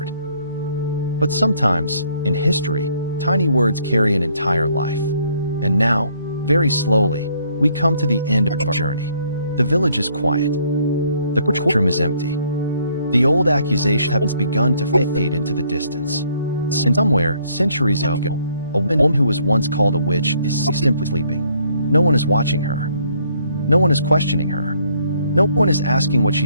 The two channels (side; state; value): both; inverted; correlation -0.66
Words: But sometimes, in history, tiny words carry an entire life. And now, very slowly, we come to the end of our journey. The village is quiet. The courtroom is empty. The old accusation has begun to fade into the distance. And somewhere, centuries ago, a woman who was once called a witch is simply sleeping. No one is watching her. No one is questioning her. No one is asking what